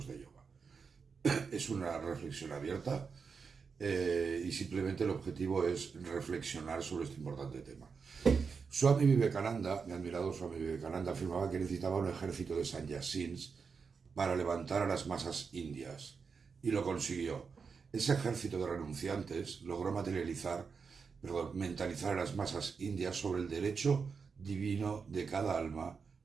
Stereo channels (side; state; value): left; quieter; 5.5 dB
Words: de yoga. Es una reflexión abierta y simplemente el objetivo es reflexionar sobre este importante tema. Swami Vivekananda, mi admirado Swami Vivekananda, afirmaba que necesitaba un ejército de sannyasins para levantar a las masas indias, y lo consiguió. Ese ejército de renunciantes logró mentalizar a las masas indias sobre el derecho divino de cada alma